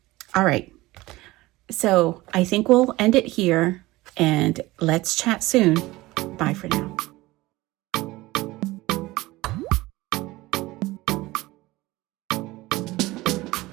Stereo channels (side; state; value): left; quieter; 19.4 dB